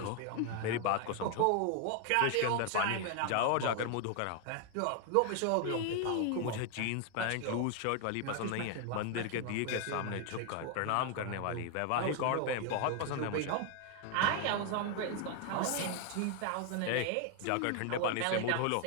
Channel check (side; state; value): both; different; correlation 0.00